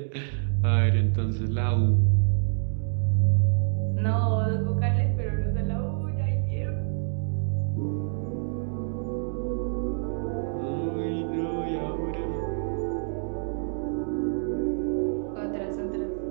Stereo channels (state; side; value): silent; left; digital silence